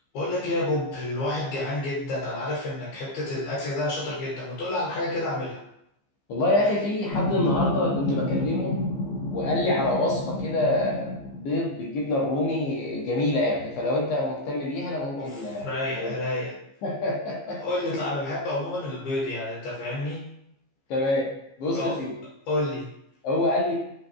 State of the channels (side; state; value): right; late; 15 ms